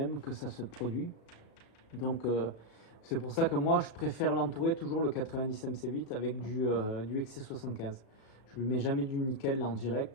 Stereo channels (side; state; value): right; late; 35 ms